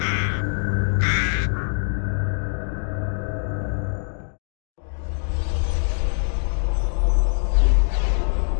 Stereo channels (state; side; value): silent; right; 59 dB below the other